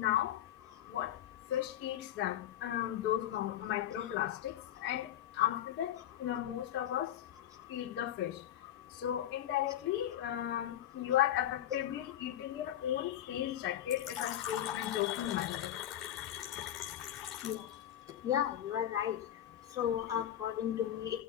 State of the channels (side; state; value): right; quieter; 11.6 dB